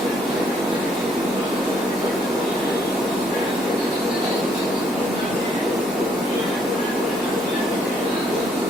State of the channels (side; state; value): both; normal; correlation 0.68